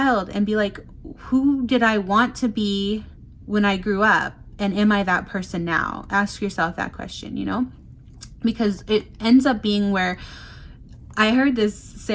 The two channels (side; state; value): both; identical; correlation 1.00